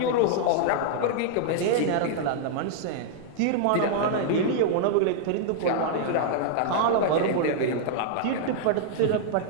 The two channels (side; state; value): both; different; correlation -0.01